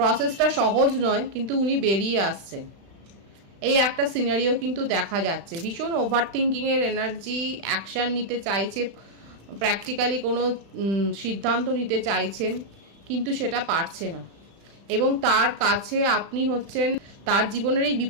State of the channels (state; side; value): late; left; 36 ms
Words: সহজ নয়, কিন্তু উনি বেরিয়ে আসছেন, এই একটা সিনারিও কিন্তু দেখা যাচ্ছে। ভীষণ ওভার থিঙ্কিংয়ের এনার্জি, অ্যাকশান নিতে চাইছে, প্র্যাকটিক্যালি কোনো সিদ্ধান্ত নিতে চাইছেন কিন্তু সেটা পারছে না, এবং তার কাছে আপনি হচ্ছেন, তার জীবনের এই